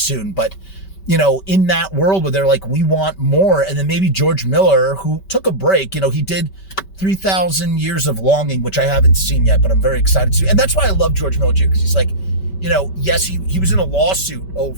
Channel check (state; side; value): late; right; 5.2 ms